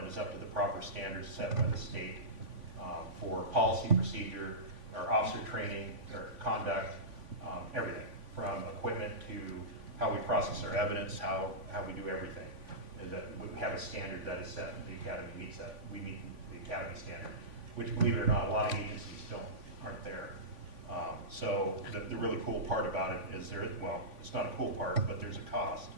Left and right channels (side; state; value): left; late; 3.5 ms